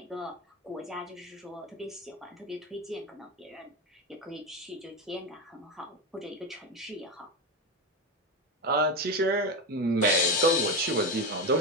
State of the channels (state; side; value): normal; both; correlation 0.16